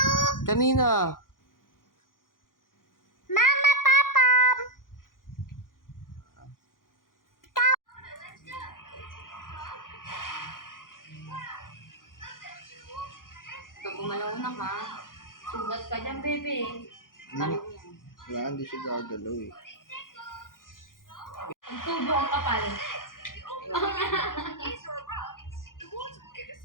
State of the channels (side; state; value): right; late; 0.90 ms